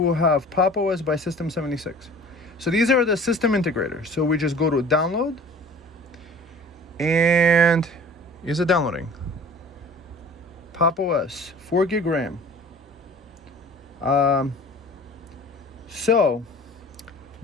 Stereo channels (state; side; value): normal; both; correlation 0.45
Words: have Pop OS by System 76. So these are the system integrators. So we just go to download, and is it downloading? Pop OS, 4 gig RAM. So